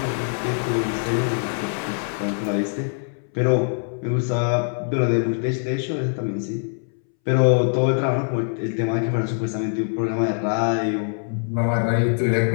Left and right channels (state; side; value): silent; right; 63 dB below the other